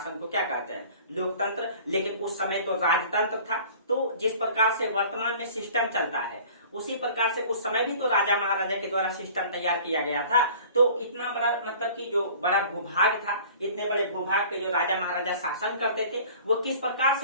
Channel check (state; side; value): inverted; both; correlation -0.47